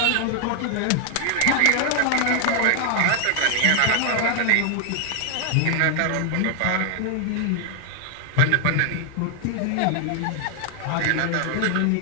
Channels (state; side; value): different; both; correlation 0.00